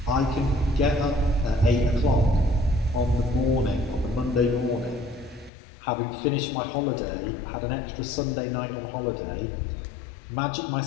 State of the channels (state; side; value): drops out; right; at 5.5 s